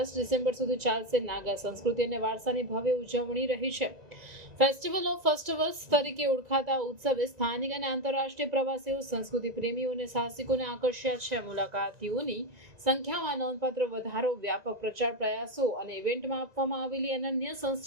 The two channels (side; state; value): left; late; 1.9 ms